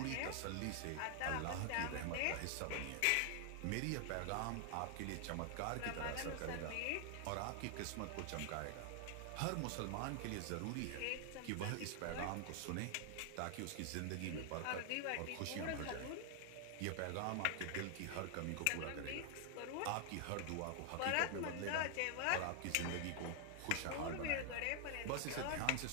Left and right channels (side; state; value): both; different; correlation 0.00